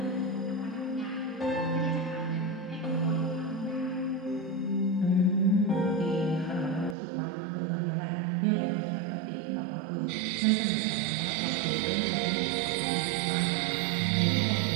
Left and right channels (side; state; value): left; drops out; at 7.0 s